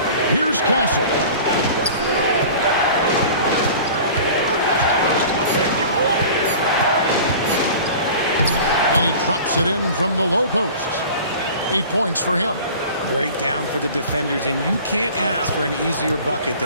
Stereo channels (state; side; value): inverted; both; correlation -0.41